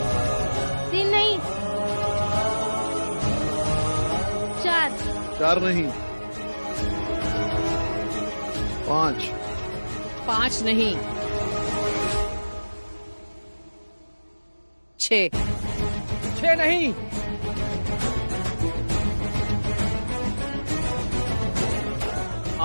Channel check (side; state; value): both; inverted; correlation -1.00